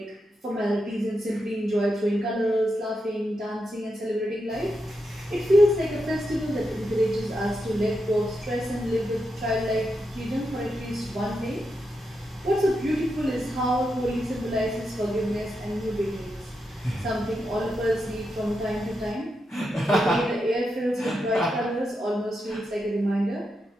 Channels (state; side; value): normal; both; correlation 0.85